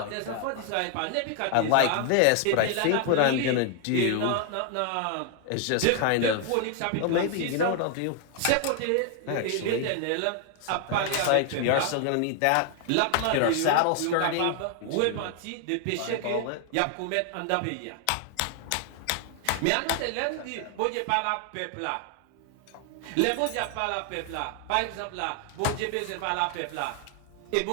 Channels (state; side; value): different; both; correlation 0.00